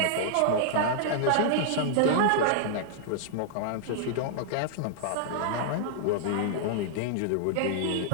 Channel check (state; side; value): different; both; correlation -0.01